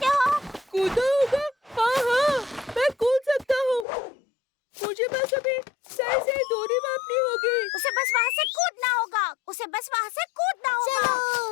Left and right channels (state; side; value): drops out; right; at 3.9 s